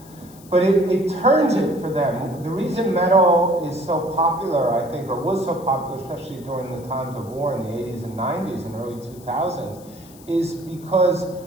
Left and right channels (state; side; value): noise; left; hiss, 23 dB below the sound